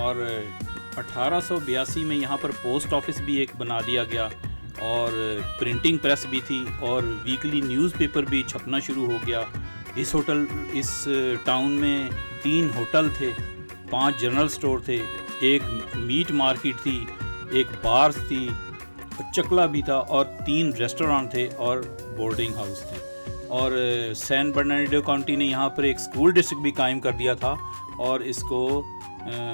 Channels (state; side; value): inverted; both; correlation -1.00